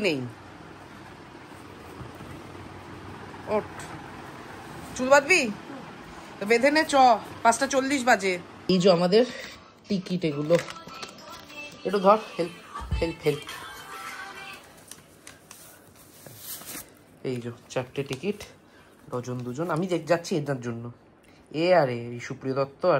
নেই। ওঠ, চুল বাঁধবি তো বেঁধে নে, চ 5:40 বাজে। এই যে আমাদের টিকিট, এগুলো একটু ধর, হেল্প হেল্প হেল্প। এই যে 4টে টিকিট, ডজন দুজন। আমি যাচ্ছি এদের জন্য, এ আর এই সুপ্রিয় দত্ত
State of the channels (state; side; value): identical; both; correlation 1.00